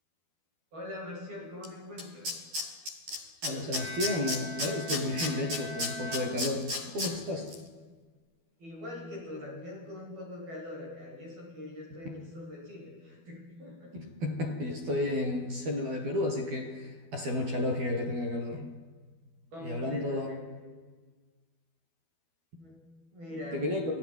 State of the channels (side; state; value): left; late; 12 ms